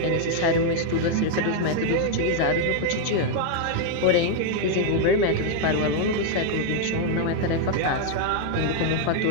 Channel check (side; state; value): both; different; correlation 0.00